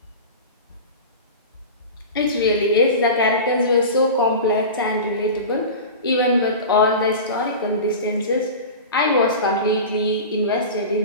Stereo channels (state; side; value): inverted; both; correlation -0.31